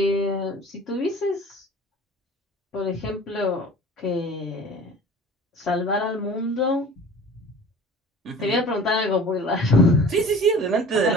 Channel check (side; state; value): both; normal; correlation 0.43